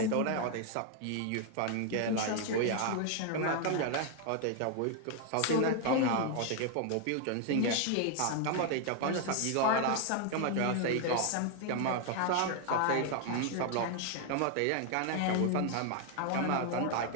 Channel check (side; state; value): both; different; correlation 0.00